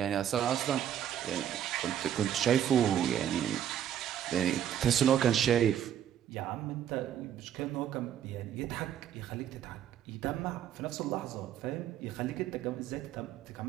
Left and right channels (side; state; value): left; quieter; 10.1 dB